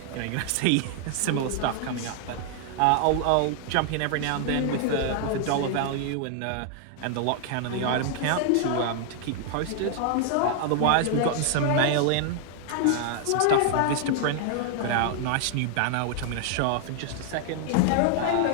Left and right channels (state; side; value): different; both; correlation 0.00